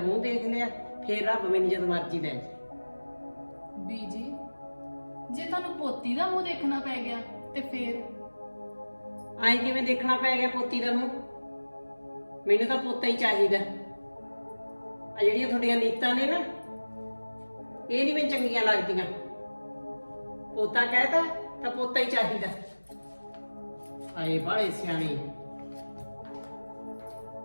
ਦੇਖ ਲਿਆ ਫੇਰ ਰੱਬ ਮੈਨੂੰ ਜਦ ਮਰਜ਼ੀ ਲੈ ਜਾਏ। बीजी जे ਤੁਹਾਨੂੰ ਪੋਤੀ ਦਾ ਮੂੰਹ ਦੇਖਣਾ ਪੈ ਗਿਆ ਤੇ ਫੇਰ ਆਏ ਕਿਵੇਂ ਦੇਖਣਾ ਪੈ ਗਿਆ ਪੋਤੀ ਦਾ ਮੂੰਹ? ਮੈਨੂੰ ਤਾਂ ਪੋਤਾ ਹੀ ਚਾਹੀਦਾ। ਆ ਜਿਹੜੀਆਂ ਤੁਹਾਡੀਆਂ ਨੀਤਾਂ ਨੇ ਨਾ ਇਹ ਨਹੀਂ ਮੈਨੂੰ ਚੰਗੀਆਂ ਲੱਗਦੀਆਂ। ਪੋਤਾ ਕਹਿਤਾ ਤਾਂ ਪੋਤਾ ਹੀ ਚਾਹੀਦਾ। ਆਏ ਬਾਲੇ ਸਿਆਣੇ।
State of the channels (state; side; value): inverted; both; correlation -1.00